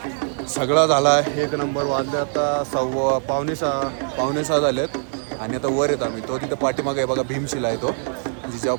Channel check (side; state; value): left; silent; 64 dB below the other